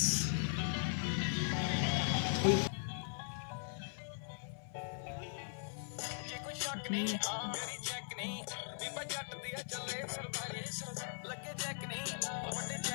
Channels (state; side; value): silent; right; 51 dB below the other